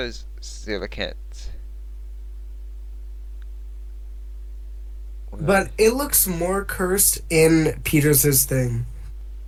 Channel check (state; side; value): identical; both; correlation 1.00